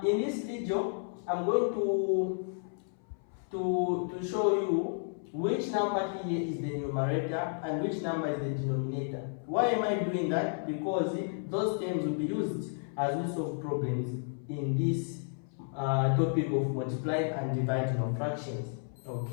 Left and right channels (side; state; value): right; silent; 56 dB below the other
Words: in this video, I'm going to show you which number here is the numerator and which number is the denominator. Why am I doing that? Because those terms will be used as we solve problems in this topic of multiplying and dividing of fractions.